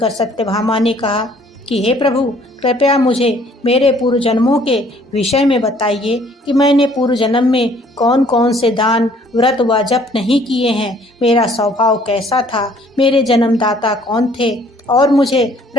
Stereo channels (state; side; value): normal; both; correlation 0.59